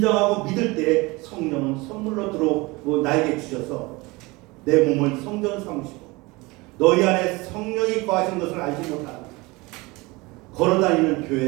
믿을 때 성령은 선물로 들어오고 나에게 주셔서 내 몸을 성전 삼으시고 너희 안에 성령이 거하신 것을 알지 못하는 걸어다니는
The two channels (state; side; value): quieter; left; 23.7 dB